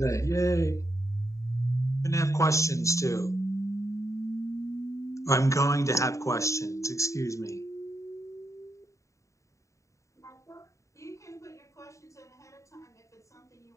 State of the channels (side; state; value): right; late; 0.15 ms